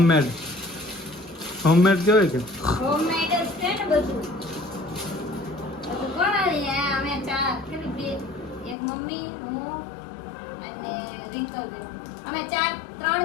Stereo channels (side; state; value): right; drops out; at 8.8 s